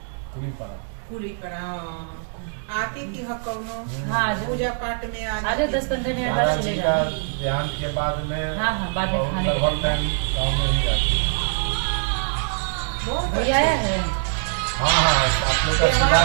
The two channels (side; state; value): left; silent; digital silence